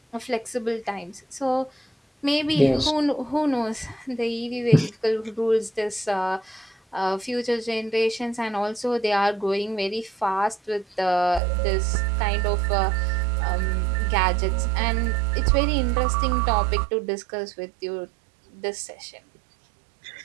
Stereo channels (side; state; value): left; drops out; at 11.4 s